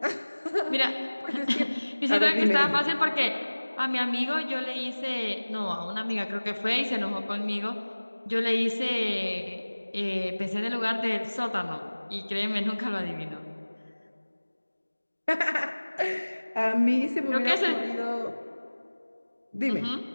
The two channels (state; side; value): inverted; both; correlation -1.00